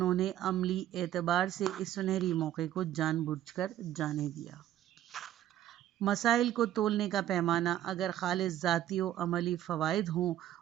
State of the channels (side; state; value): left; quieter; 12.3 dB